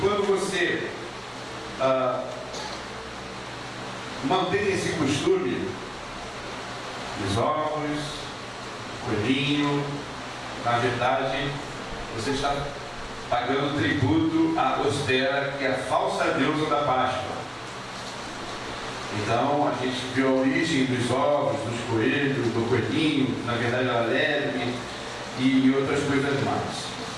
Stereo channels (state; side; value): identical; both; correlation 1.00